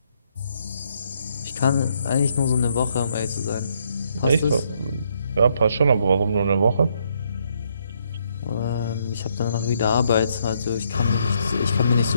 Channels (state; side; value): inverted; both; correlation -0.73